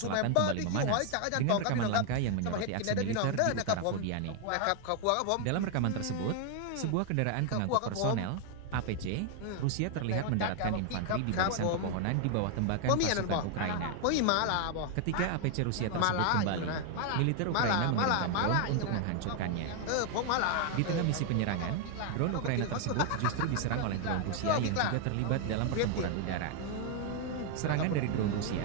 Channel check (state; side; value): different; both; correlation 0.00